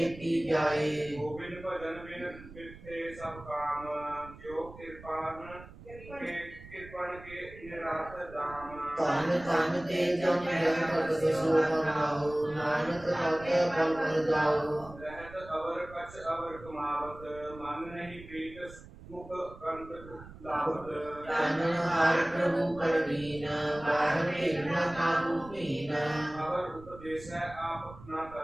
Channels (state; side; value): noise; right; rumble, 17 dB below the sound